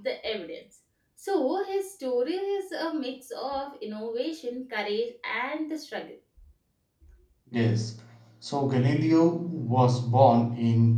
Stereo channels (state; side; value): identical; both; correlation 1.00